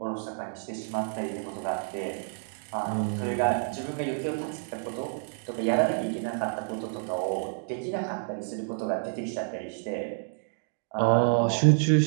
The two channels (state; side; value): silent; left; digital silence